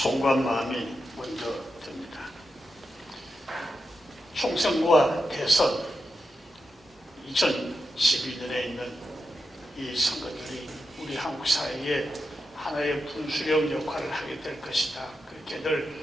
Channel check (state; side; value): normal; both; correlation 0.88